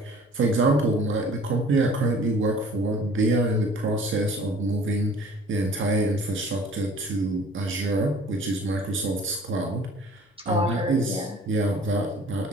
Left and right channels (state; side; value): normal; both; correlation 0.49